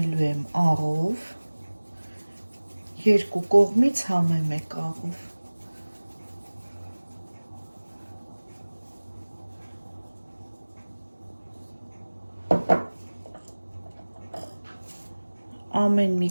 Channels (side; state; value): both; inverted; correlation -1.00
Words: եմ աղով, երկու կողմից համեմ եք աղով։ Ամեն մի